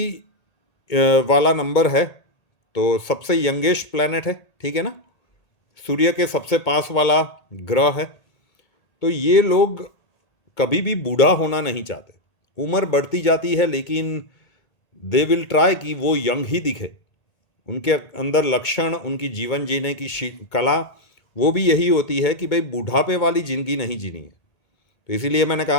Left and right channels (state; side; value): late; right; 1.8 ms